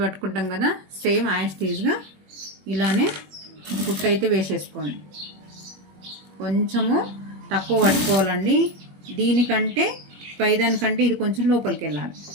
పట్టుకుంటాం కదా, సేమ్ యాస్టీజ్గా ఇలానే కుట్టు అయితే వేసేసుకోండి. కొంచెము తక్కువ పట్టుకోవాలండి, దీనికంటే పైదానికంటే ఇది కొంచెం లోపలికి వెళ్ళాలి,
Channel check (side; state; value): left; late; 21 ms